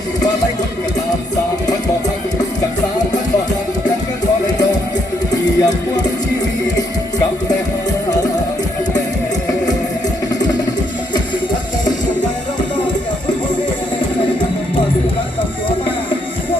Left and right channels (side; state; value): both; normal; correlation 0.73